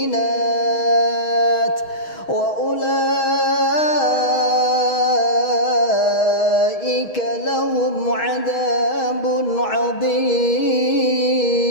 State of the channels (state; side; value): late; right; 6.3 ms